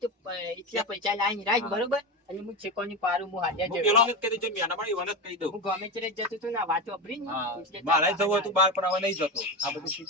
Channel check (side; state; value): both; normal; correlation 0.18